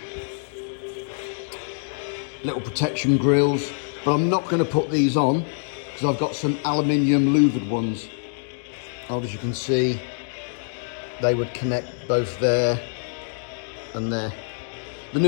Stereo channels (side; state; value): right; silent; digital silence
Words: little protection grills, but I'm not going to put these on because I've got some aluminium louvered ones. As you can see, they would connect both there and there. The